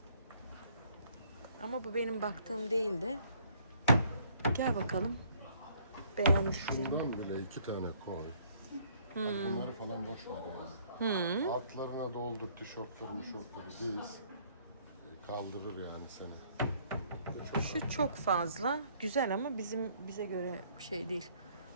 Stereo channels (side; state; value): both; inverted; correlation -0.62